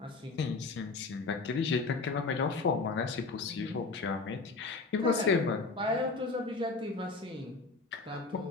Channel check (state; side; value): quieter; right; 3.9 dB